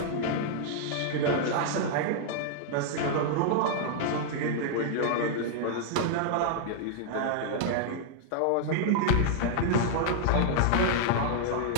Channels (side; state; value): both; different; correlation -0.01